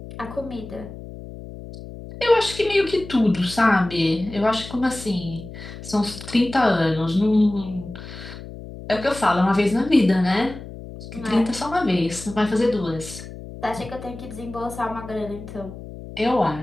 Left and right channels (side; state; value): left; noise; hum, 13 dB below the sound